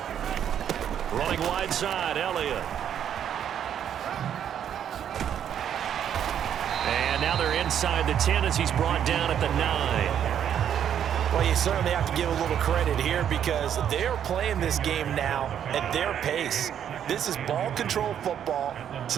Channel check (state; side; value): quieter; left; 9.3 dB